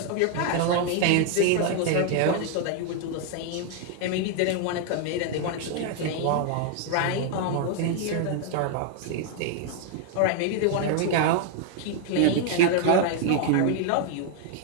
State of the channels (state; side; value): different; both; correlation 0.00